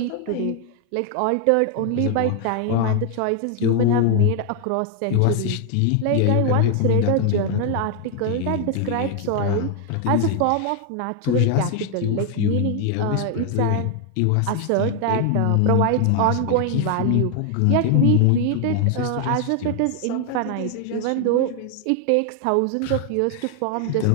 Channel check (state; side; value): different; both; correlation 0.00